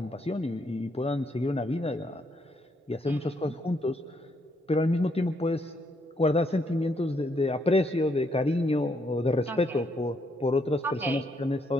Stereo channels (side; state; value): both; normal; correlation 0.74